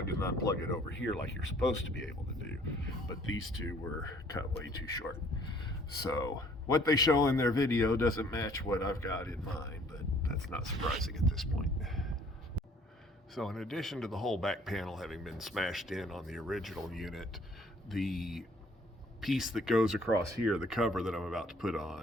and unplug it over here like you're supposed to be able to do. But these two were cut way too short. So what they show in their video doesn't match what I've got in mind, but that's not surprising at this point. So in addition to the whole back panel having been smashed in on the original unit, the piece that goes across here, the cover that I'm about to put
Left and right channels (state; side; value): normal; both; correlation 0.58